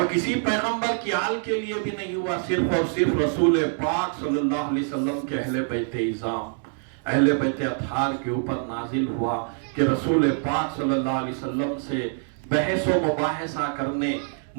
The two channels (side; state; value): left; silent; 58 dB below the other